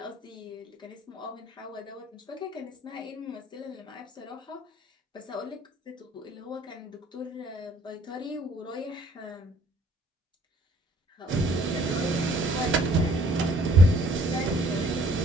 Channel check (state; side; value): normal; both; correlation 0.59